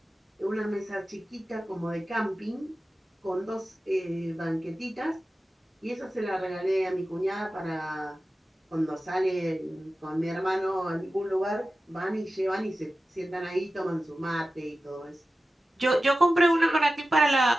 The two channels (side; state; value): both; normal; correlation 0.94